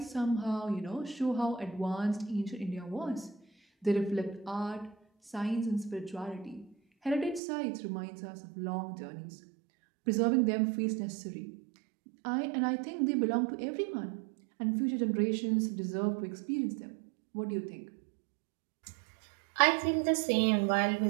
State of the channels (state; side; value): drops out; left; at 7.4 s